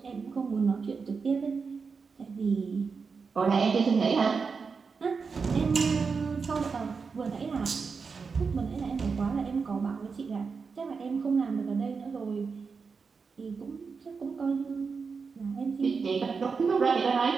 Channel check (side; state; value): left; quieter; 5.1 dB